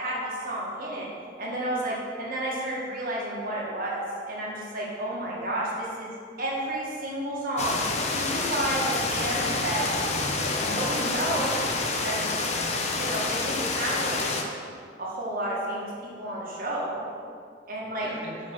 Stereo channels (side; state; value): both; normal; correlation 0.05